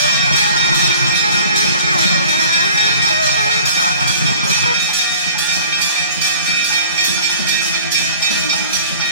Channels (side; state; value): both; inverted; correlation -0.47